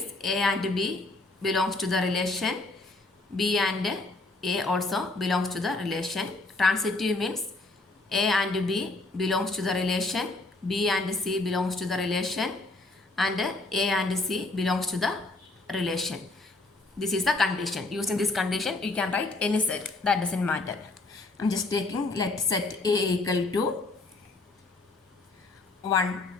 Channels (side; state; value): right; quieter; 3.1 dB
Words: A and B belongs to the relation. B and A also belongs to the relation. Transitive means A and B belongs to the relation. B and C belongs to the relation. And A and C belongs to the relation. This is the condition. Using this condition, you can write any set. That doesn't matter. I'm just taking, let set A equal to 1,